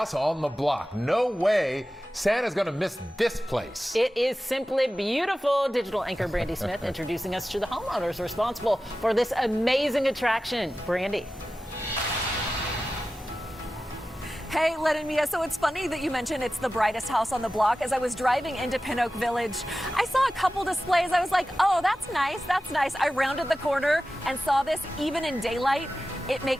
on the block. No way Santa's going to miss this place. It is simply beautiful. Digital anchor Brandi Smith introducing us to the homeowners responsible for this amazing attraction. Brandi. Hey, Len and Mia, so it's funny that you mentioned it's the brightest house on the block. As I was driving into Pin Oak Village, I saw a couple displays. I was like, oh, that's nice, that's nice. I rounded the corner and saw this even in daylight. It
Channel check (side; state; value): both; normal; correlation 0.94